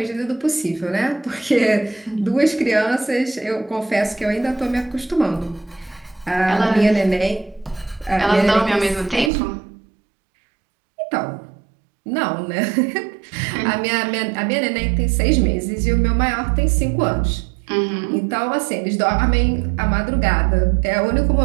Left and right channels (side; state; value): left; drops out; at 9.3 s